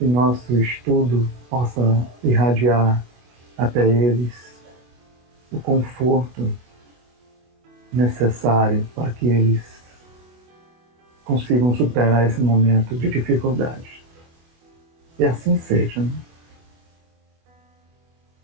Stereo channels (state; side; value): late; left; 25 ms